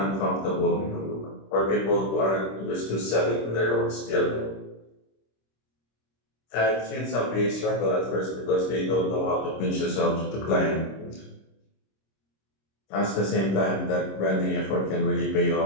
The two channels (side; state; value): right; late; 26 ms